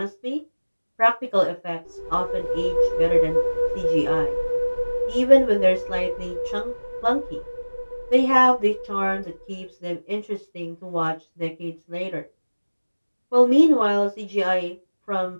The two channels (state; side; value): inverted; both; correlation -1.00